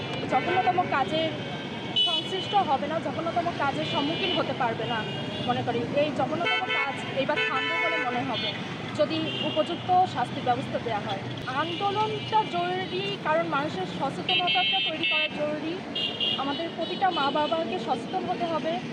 জঘন্যতম কাজের সংশ্লিষ্ট হবে না, জঘন্যতম কাজের সম্মুখীন হতে পারবে না। মনে করি এই জঘন্যতম কাজ এইবার থামবে বলে মনে হবে যদি উপযুক্ত শাস্তির ব্যবস্থা দেওয়া হয়। আন্দোলনটা জরুরি, কারণ মানুষের সচেতনতাটা তৈরি করা জরুরি। আমাদের প্রতিটা মা বাবাকে সচেতন হতে হবে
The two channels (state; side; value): identical; both; correlation 1.00